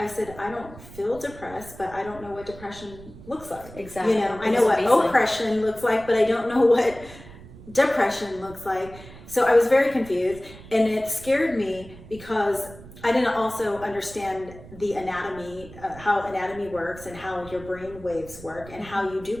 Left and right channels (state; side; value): noise; right; rumble, 18 dB below the sound